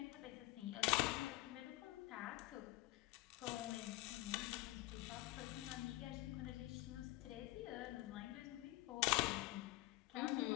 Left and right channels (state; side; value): quieter; right; 18.7 dB